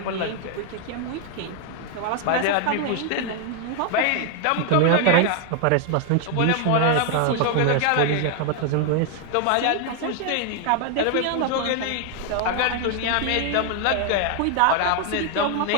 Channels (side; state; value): both; different; correlation 0.00